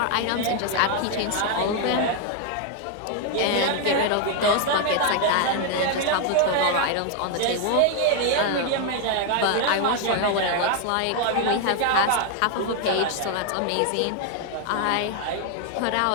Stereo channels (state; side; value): different; both; correlation 0.01